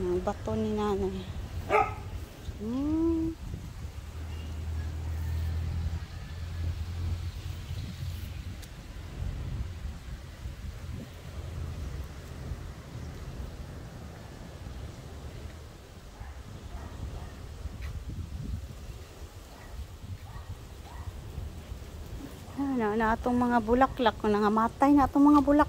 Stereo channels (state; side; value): identical; both; correlation 1.00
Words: bato ni nanay. Na itong mga bulaklak. Nangamatay na itong mga